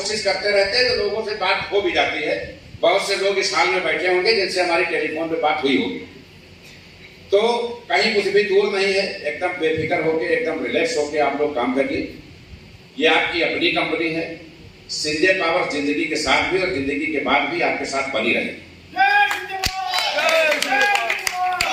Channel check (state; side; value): identical; both; correlation 1.00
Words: करते रहते हैं तो लोगों से बात हो भी जाती है। बहुत से लोग इस हाल में बैठे होंगे जिनसे हमारी टेलीफोन पे बात हुई होगी। तो कहीं कुछ भी दूर नहीं है, एकदम बेफिक्र होके, एकदम रिलैक्स होके आप लोग काम करिए। ये आपकी अपनी कंपनी है। संजय पावर जिंदगी के साथ भी और जिंदगी के बाद भी आपके साथ बनी रहे।